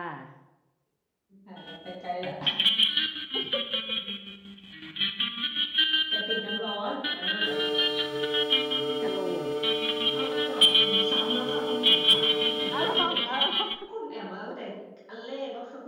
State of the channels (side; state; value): both; identical; correlation 1.00